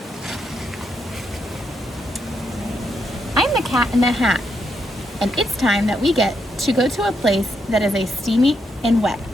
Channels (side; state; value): both; normal; correlation 0.79